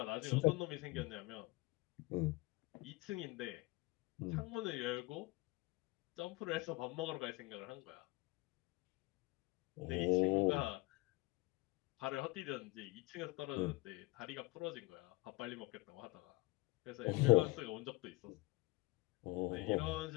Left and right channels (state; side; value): quieter; right; 23.2 dB